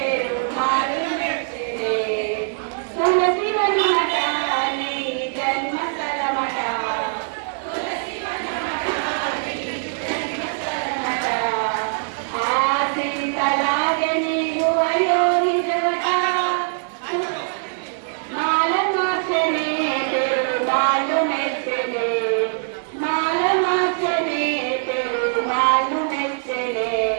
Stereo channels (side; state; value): left; silent; digital silence